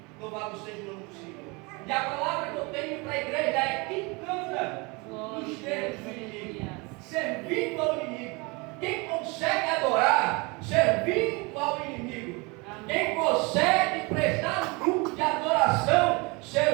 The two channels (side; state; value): left; quieter; 27.5 dB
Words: Louvado seja o nome do Senhor. E a palavra que eu tenho para a igreja é: quem canta nos termos do inimigo, servindo ao inimigo. Quem consegue adorar servindo ao inimigo. Quem consegue prestar um grupo de adoração